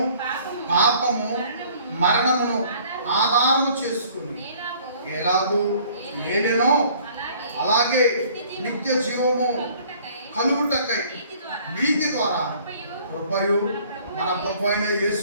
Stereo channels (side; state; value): both; inverted; correlation -0.55